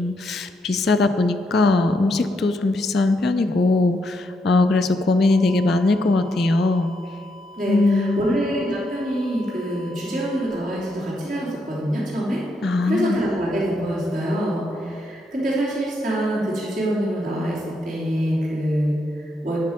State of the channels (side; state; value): both; normal; correlation 0.79